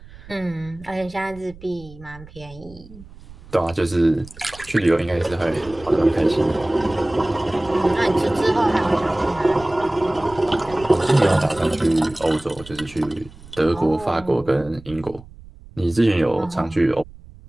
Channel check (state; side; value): noise; right; rumble, 20 dB below the sound